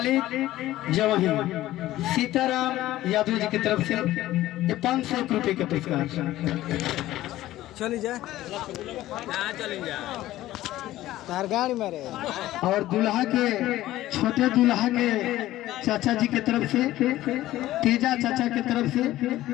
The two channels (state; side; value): quieter; right; 15.3 dB